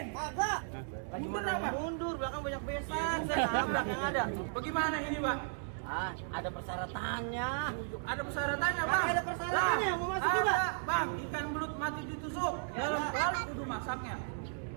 Kagak. Mundur Gimana apa? mundur, belakang banyak besan, saya nabrak yang ada. Bagaimana ini pak? Ah, ada persyaratannya. Ada persyaratannya bang. Ada persyaratannya, mau masuk juga? Bang, ikan belut mati ditusuk. Dalam balik kudu masaknya.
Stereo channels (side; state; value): left; silent; digital silence